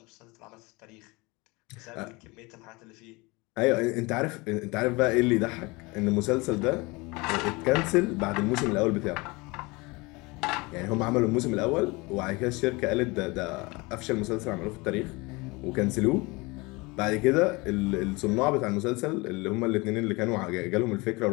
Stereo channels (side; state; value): right; quieter; 24.9 dB